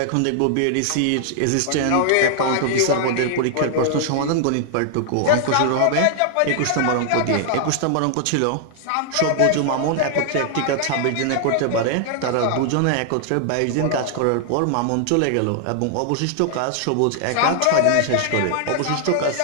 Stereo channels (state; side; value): different; both; correlation 0.00